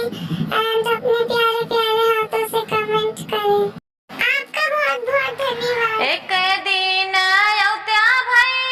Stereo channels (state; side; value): identical; both; correlation 1.00